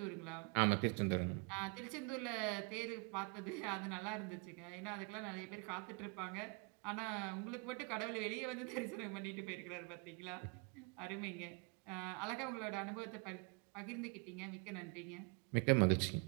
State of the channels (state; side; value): quieter; left; 32.2 dB